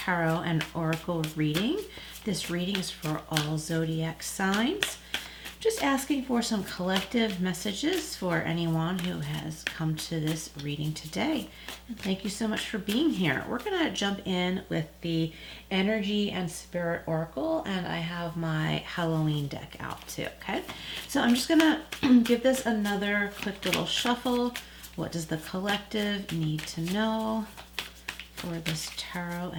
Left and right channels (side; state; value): both; identical; correlation 1.00